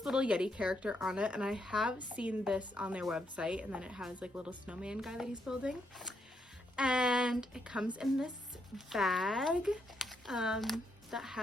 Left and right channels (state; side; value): normal; both; correlation 0.77